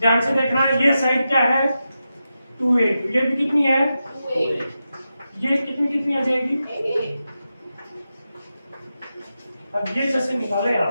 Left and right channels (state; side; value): inverted; both; correlation -0.90